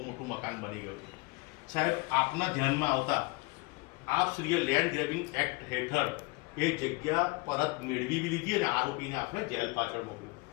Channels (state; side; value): quieter; right; 26.0 dB